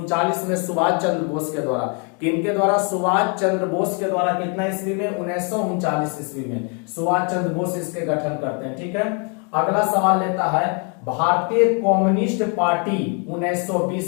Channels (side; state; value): right; quieter; 36.8 dB